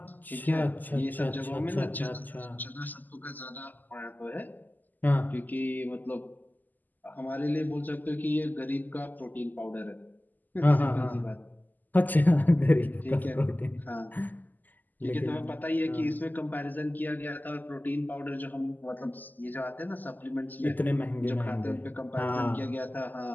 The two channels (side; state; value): right; late; 0.085 ms